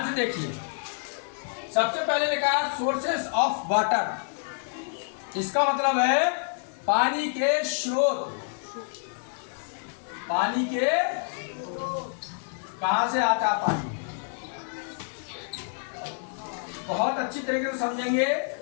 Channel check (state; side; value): silent; right; 59 dB below the other